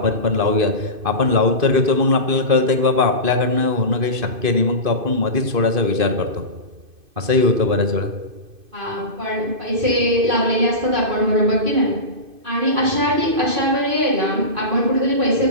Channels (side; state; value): left; late; 2.5 ms